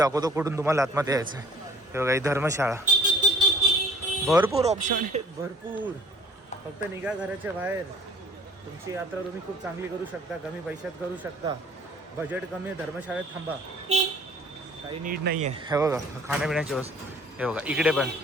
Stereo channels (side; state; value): both; normal; correlation 0.53